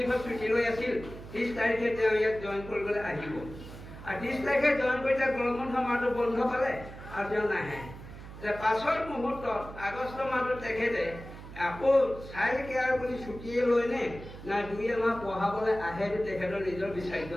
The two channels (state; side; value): noise; right; hum, 14 dB below the sound